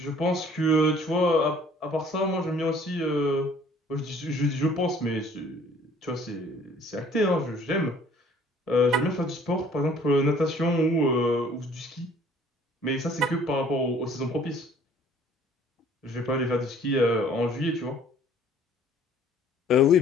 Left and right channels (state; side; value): normal; both; correlation 0.55